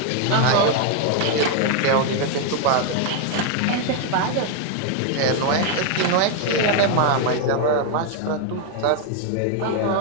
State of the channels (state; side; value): different; both; correlation 0.01